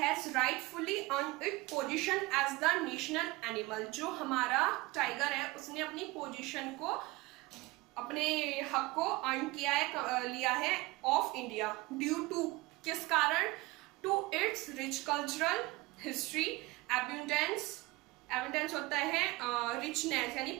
rightfully earned its position as the national animal, जो हमारा टाइगर है उसने अपनी पोजीशन को, अपने हक को अर्न किया है, लिया है ऑफ इंडिया। ड्यू टू, किस कारण? To it's rich cultural history, abundance, abundance होता है रिचनेस यानी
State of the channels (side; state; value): left; quieter; 21.8 dB